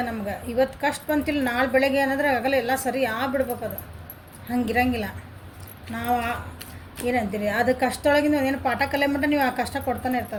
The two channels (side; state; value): both; identical; correlation 1.00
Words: ನಮ್ಗೆ. ಇವತ್ತು ಕಷ್ಟ ಬಂತಿಲ್ಲ, ನಾಳೆ ಬೆಳಗ್ಗೆ ಏನಾದ್ರೆ ಆಗಲ್ಲ, ಎಲ್ಲ ಸರಿ ಆಗ್ಬಿಡ್ಬೇಕು. ಅದು ಹಂಗಿರಂಗಿಲ್ಲ. ನಾವು ಏನಂತೀರಿ, ಅದು ಕಷ್ಟದೊಳಗಿಂದ ಏನು ಪಾಠ ಕಲಿಯ ಮಟ್ಟ ನೀವು ಆ ಕಷ್ಟ ಕೊಡ್ತಾನೆ